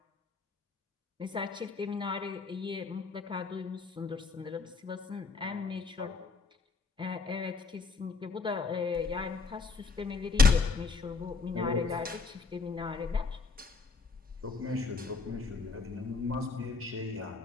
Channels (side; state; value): right; quieter; 4.5 dB